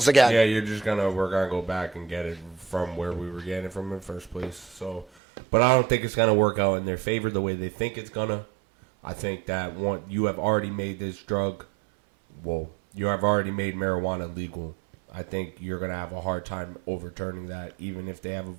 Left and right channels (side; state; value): left; drops out; at 5.1 s